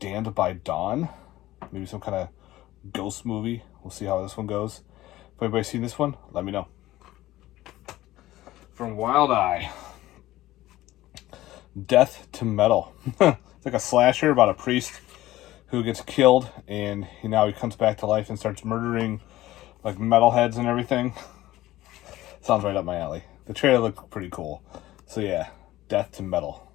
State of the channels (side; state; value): right; quieter; 16.1 dB